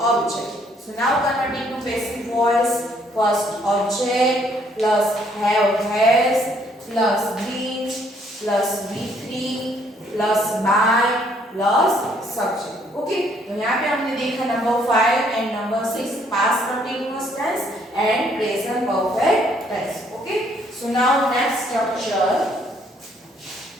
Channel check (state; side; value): normal; both; correlation 0.66